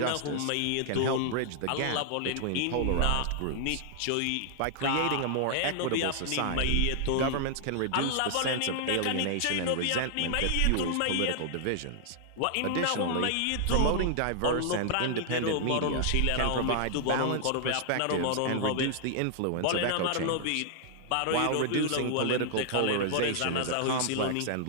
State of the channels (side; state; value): both; different; correlation -0.01